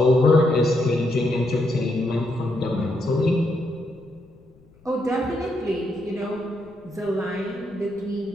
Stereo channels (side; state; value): left; noise; rumble, 28 dB below the sound